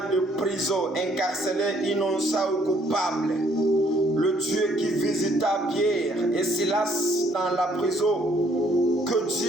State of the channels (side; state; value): both; normal; correlation 0.65